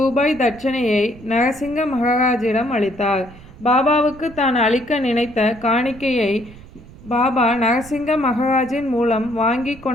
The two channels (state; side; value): noise; right; rumble, 19 dB below the sound